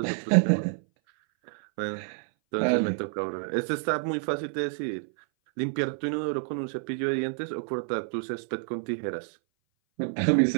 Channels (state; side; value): silent; left; 58 dB below the other